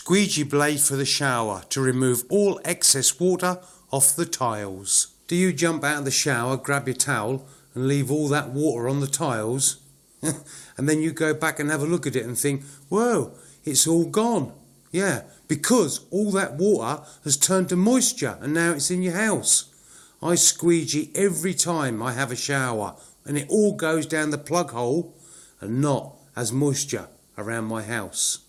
blade for the shower to remove all excess water off the tiles. Do you jump out of the shower, grab your towel and leave all that water on the tiles? And then you go back and have a look at it and think, whoa, it's all gone. Yeah, because all that water has turned to moisture and now it's in your house. I squeegee every time I have a shower and it all goes down the plug hole and not as moisture around my house.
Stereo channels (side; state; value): both; identical; correlation 1.00